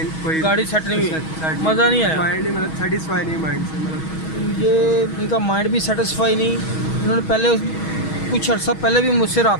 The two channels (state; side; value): late; right; 6.3 ms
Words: कोई गाड़ी सेट नहीं हुई, मज़ा नहीं आया। माइंड नहीं, मतलब सेटिस्फाई नहीं माइंड से, मतलब ये इनका माइंड भी सेटिस्फाई नहीं। इन्होंने पहले कुछ अर्सा पहले भी मुझसे